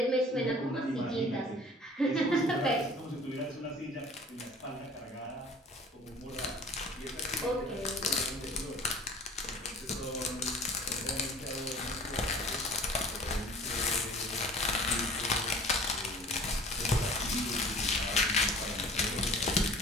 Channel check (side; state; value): both; normal; correlation 0.46